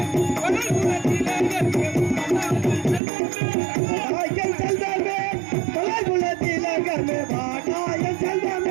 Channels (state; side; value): drops out; left; at 3.0 s